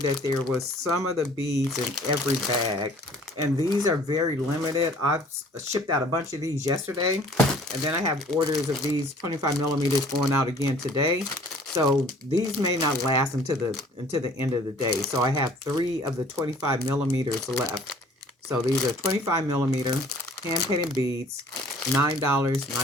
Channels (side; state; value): both; normal; correlation 0.53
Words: there was some of the beads in every bag. And these are very limited. I've shipped out a bunch of these yesterday, and then I have orders of these 25 millimeters going out again today. So these may not last until the end of the day. So I have 3 of the 25 millimeters left. So these are 25 millimeter hand-painted beads,